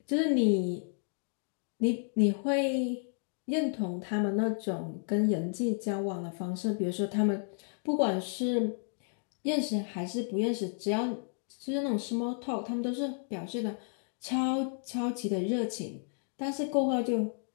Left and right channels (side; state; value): right; silent; 56 dB below the other